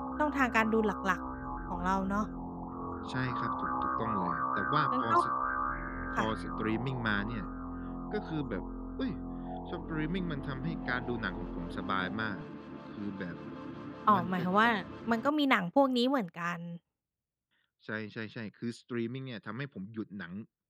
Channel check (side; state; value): both; identical; correlation 1.00